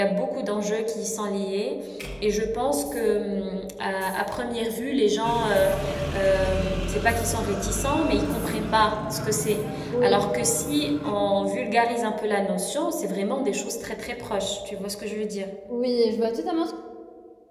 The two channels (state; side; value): identical; both; correlation 1.00